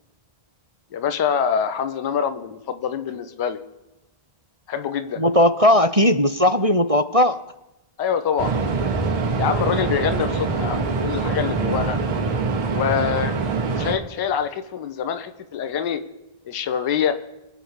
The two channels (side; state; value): left; late; 1.6 ms